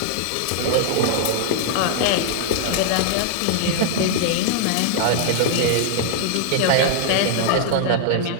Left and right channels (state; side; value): different; both; correlation -0.01